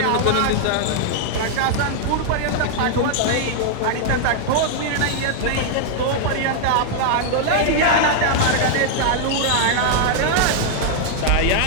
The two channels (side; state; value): both; different; correlation -0.01